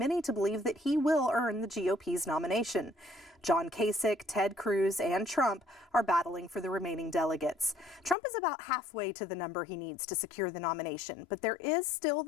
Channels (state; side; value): drops out; right; at 8.2 s